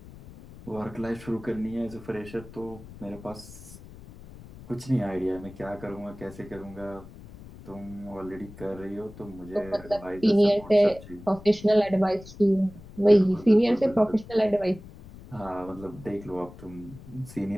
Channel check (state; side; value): noise; left; rumble, 17 dB below the sound